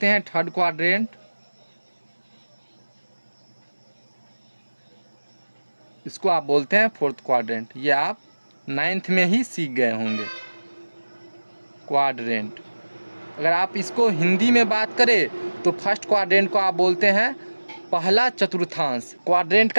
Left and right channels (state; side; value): inverted; both; correlation -1.00